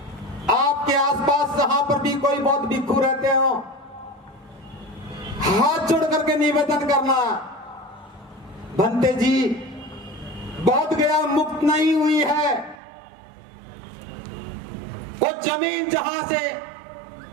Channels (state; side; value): drops out; left; at 12.8 s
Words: आपके आसपास जहां पर भी कोई बौद्ध भिक्षु रहते हो, हाथ जोड़ करके निवेदन करना, भंते जी बोध गया मुक्त नहीं हुई है। वो जमीन जहां से